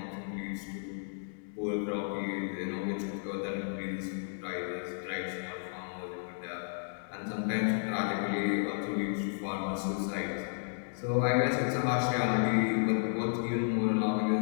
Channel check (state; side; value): silent; right; digital silence